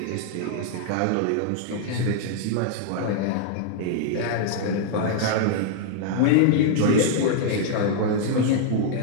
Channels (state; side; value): different; both; correlation -0.01